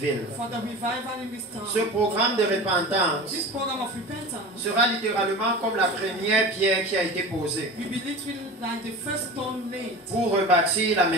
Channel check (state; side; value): normal; both; correlation 0.33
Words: Ce programme de repentance sera littéralement comme la première pierre qui a été posée pour rebâtir la